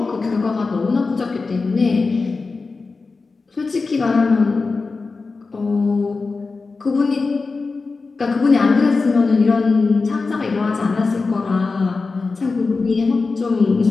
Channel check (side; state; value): right; quieter; 4.1 dB